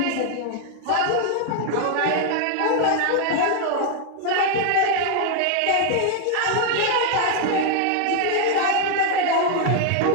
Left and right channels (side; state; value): both; different; correlation 0.00